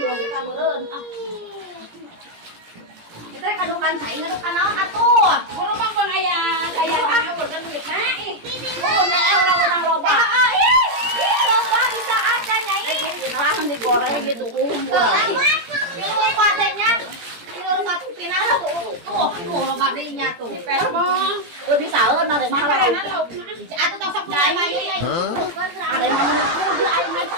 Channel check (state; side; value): late; left; 17 ms